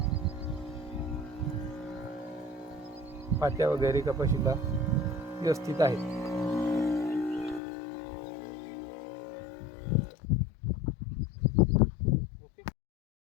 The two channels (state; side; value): drops out; right; at 7.6 s